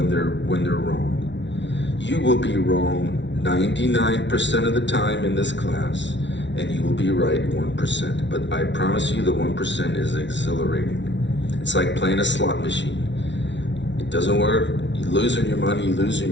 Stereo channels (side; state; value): right; late; 0.52 ms